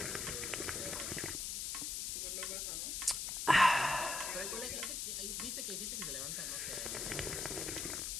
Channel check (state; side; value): noise; left; hiss, 2 dB below the sound